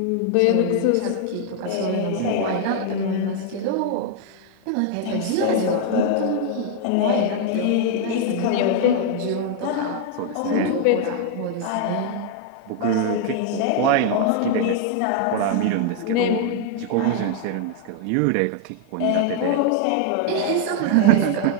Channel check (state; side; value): different; both; correlation 0.00